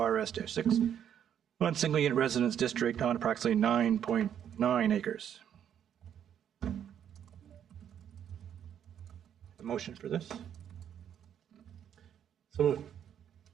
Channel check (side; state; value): left; quieter; 9.3 dB